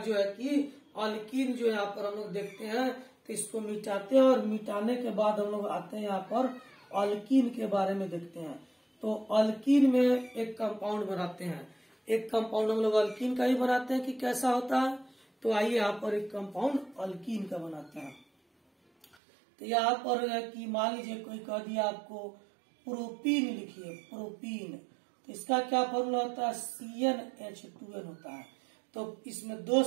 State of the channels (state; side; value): drops out; left; at 19.2 s